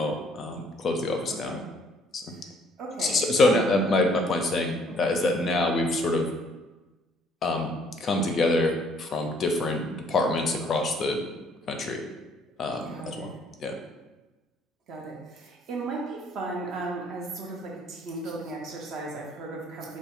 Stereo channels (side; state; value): both; normal; correlation 0.63